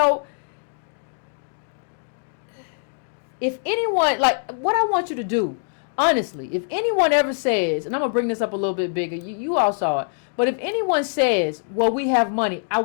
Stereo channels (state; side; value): silent; right; 63 dB below the other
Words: if anyone, like, what I want you to do, honestly, if anyone ever says, and I'm going to bring this up a little bit bigger, you all saw it, but if anyone says, well, we have money, I